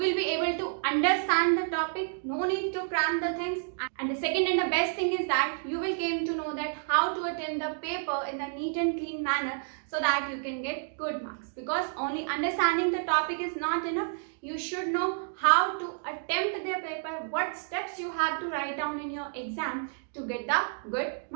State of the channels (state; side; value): silent; left; digital silence